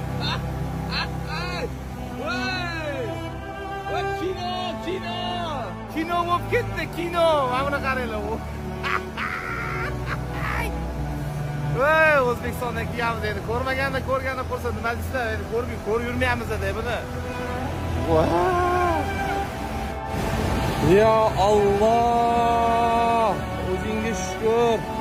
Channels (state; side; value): identical; both; correlation 1.00